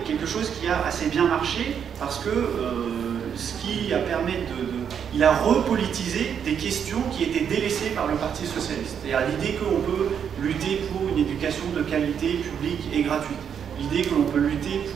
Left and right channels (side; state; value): left; quieter; 7.9 dB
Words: quelque chose qui a assez bien marché, parce que ce qui a permis il a repolitisé des questions qui étaient délaissées par le Parti socialiste. C'est-à-dire l'idée qu'on peut lutter pour une éducation de qualité publique et gratuite, l'idée que l'on peut lutter